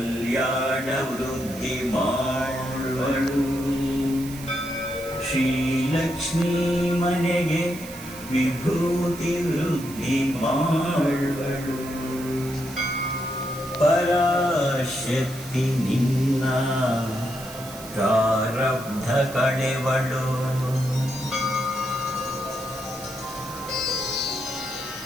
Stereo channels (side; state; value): right; noise; hiss, 15 dB below the sound